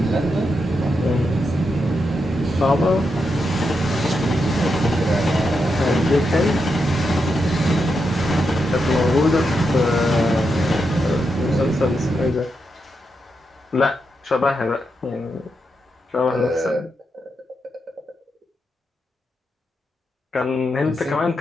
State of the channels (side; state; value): both; normal; correlation 0.84